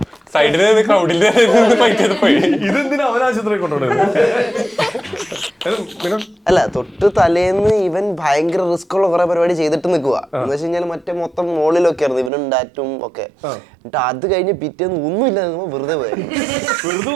സൈഡിൽ ക്രൗഡിൽ ഇതെന്തിനാ അവനാശുപത്രി കൊണ്ടുപോകുന്നത്? അല്ല, തൊട്ട് തലേന്ന് ഇവൻ ഭയങ്കര റിസ്ക് ഉള്ള കുറെ പരിപാടി ചെയ്തിട്ട് നിൽക്കുക. എന്ന് വെച്ച് കഴിഞ്ഞാൽ മറ്റേ മൊത്തം മോളിലൊക്കെ ആയിരുന്നു ഇവനും ഡാറ്റും ഒക്കെ. എന്നിട്ട് അത് കഴിഞ്ഞ് പിറ്റേന്ന് ഒന്നുമില്ല, വെറുതെ പോയായിരുന്നു.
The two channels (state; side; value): drops out; left; at 12.3 s